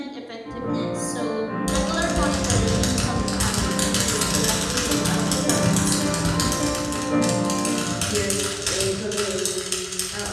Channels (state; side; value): identical; both; correlation 1.00